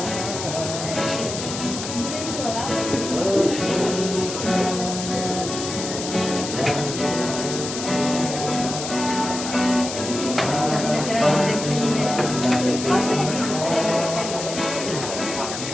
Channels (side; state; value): left; noise; hiss, 6 dB below the sound